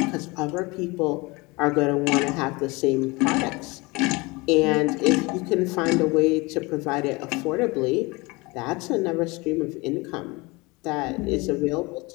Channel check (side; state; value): right; quieter; 24.8 dB